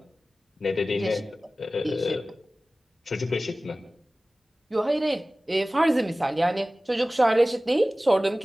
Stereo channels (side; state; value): both; normal; correlation 0.97